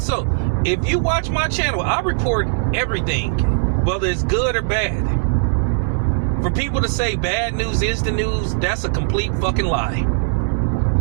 If you watch my channel, I report everything, whether it's good or bad. For people to say bad news is the news, that's a complete fucking lie.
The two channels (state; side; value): silent; left; 66 dB below the other